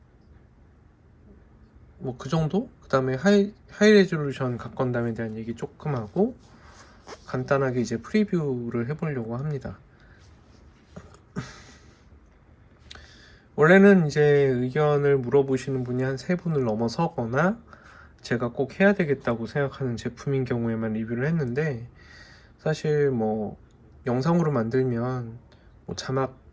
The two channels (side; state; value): both; identical; correlation 1.00